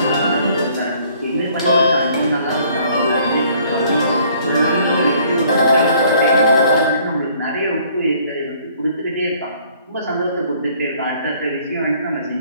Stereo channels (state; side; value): inverted; both; correlation -0.60